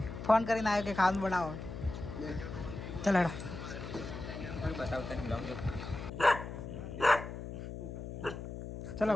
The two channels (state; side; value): noise; left; hum, 8 dB below the sound